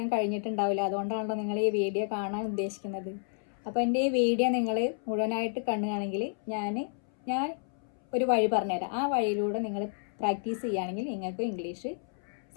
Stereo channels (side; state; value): right; silent; 57 dB below the other